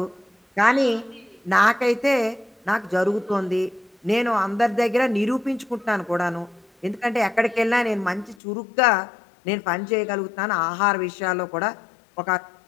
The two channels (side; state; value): right; drops out; at 8.3 s